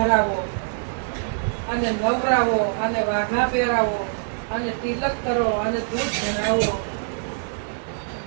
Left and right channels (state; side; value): silent; left; digital silence